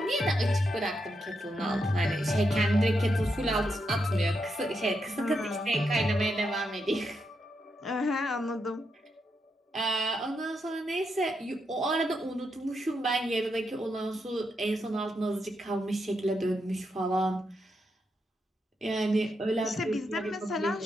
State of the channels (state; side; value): normal; both; correlation 0.83